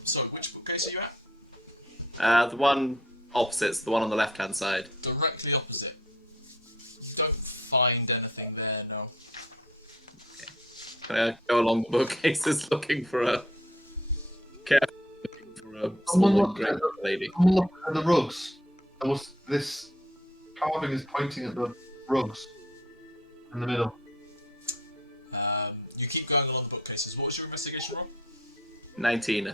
So, which bookcase are you at? The one opposite's the one on the left-hand side. Directly opposite. You don't find anything there, no. Go along the bookcases looking for a Someone small look drink lady. Someone look at the rugs. There was this carving is pointing at the rugs in the middle. You keep going along the bookcases. What was your investigation roll? 19, I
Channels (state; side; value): normal; both; correlation 0.59